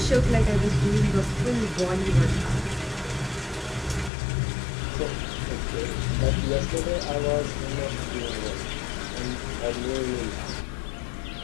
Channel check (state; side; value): drops out; right; at 4.1 s